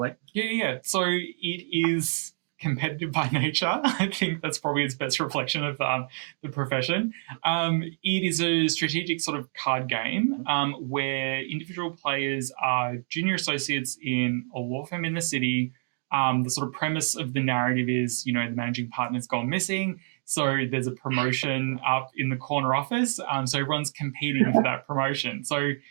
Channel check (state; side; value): silent; left; digital silence